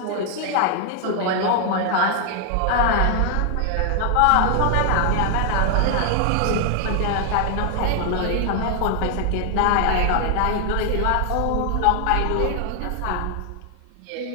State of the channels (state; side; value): different; both; correlation 0.00